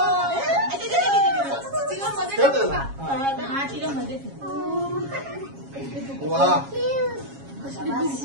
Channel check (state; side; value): late; left; 7.3 ms